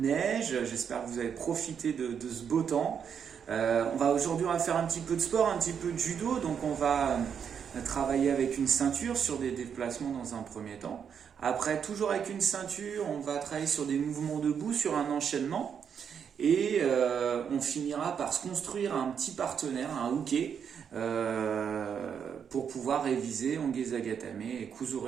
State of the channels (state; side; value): quieter; left; 7.5 dB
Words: neige, j'espère que vous avez profité de ce beau temps. Aujourd'hui on va faire un petit peu de sport, un petit peu de judo, donc on va travailler avec une ceinture sur des déplacements dans un premier temps. Après, toujours avec une ceinture, on va travailler sur des mouvements debout, sur un enchaînement. Et on finira par se construire un petit partenaire, un hooké, pour pouvoir réviser Onge Zagatame et